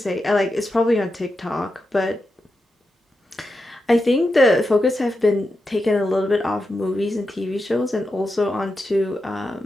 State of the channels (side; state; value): both; normal; correlation 0.88